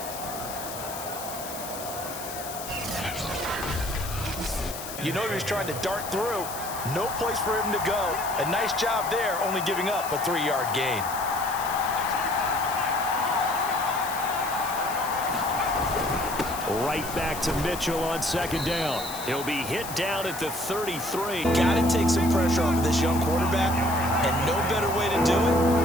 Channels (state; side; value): noise; left; hiss, 10 dB below the sound